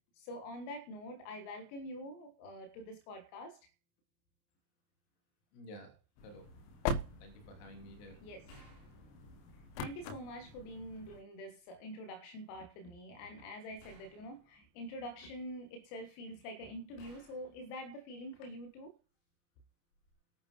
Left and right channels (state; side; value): late; right; 29 ms